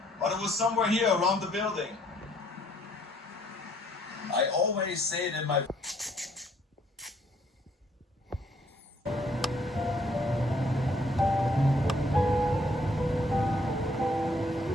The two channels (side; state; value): both; normal; correlation 0.65